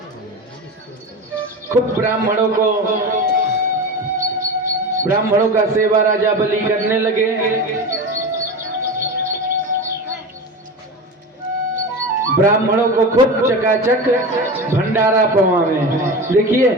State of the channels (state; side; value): normal; both; correlation 0.27